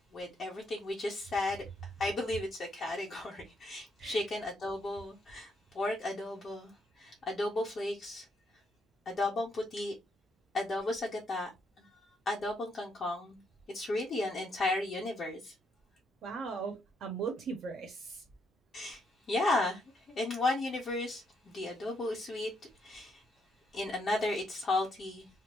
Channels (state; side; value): normal; both; correlation 0.76